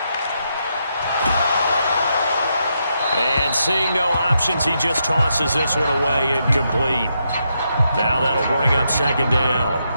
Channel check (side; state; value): both; inverted; correlation -0.81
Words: And seeing no options, he just tosses this one away, incomplete. Now that'll bring up second down.